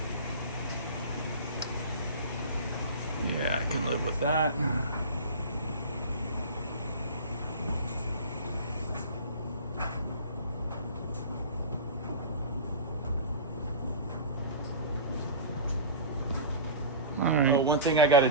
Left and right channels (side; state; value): both; inverted; correlation -0.33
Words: Yeah, I can live with that. All right. one thing I got to